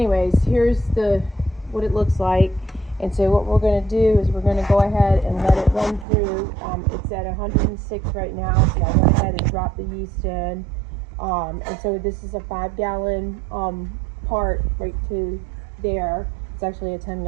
here's what it looks like. And so what we're going to do is we're going to go ahead and let it run through. It's at 106 right now, so I went ahead and dropped the yeast in. And so this is a 5-gallon part right to there. It's actually a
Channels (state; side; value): drops out; left; at 6.1 s